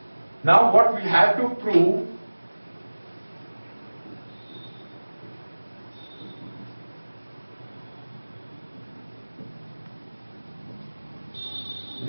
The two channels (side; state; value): both; inverted; correlation -1.00